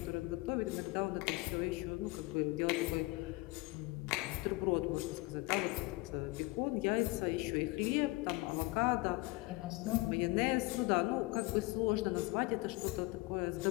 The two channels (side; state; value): right; quieter; 22.6 dB